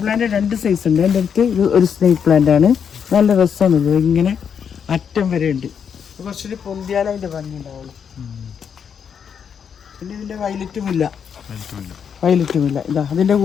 പ്ലാന്റ് 2 സൈസ് ഉണ്ട്. എൻ്റെ അടുത്ത് ഇത് ഒരു സ്നേക്ക് പ്ലാന്റ് ആണ്. നല്ല രസമാണ്. ഇത് ഇങ്ങനെ അറ്റം വരെ ഉണ്ട്. കുറച്ചൊരു പൊന്തിയാലും അതിൻ്റെ ഭംഗി ഉണ്ടാവുള്ളൂ. പിന്നെ ഇതിൻ്റെ വയലറ്റുമില്ല. ഇതാ അതിൻ്റെ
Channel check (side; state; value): right; quieter; 7.3 dB